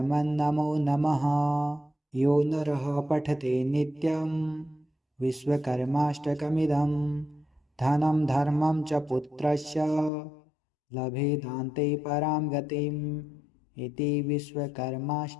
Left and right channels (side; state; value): right; drops out; at 10.1 s